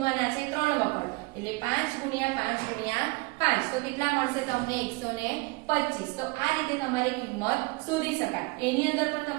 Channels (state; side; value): quieter; left; 25.8 dB